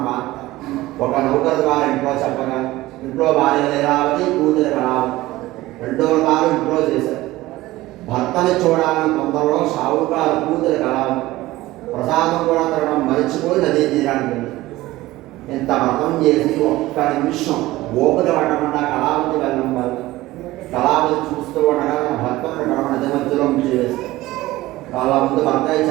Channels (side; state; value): left; quieter; 17.7 dB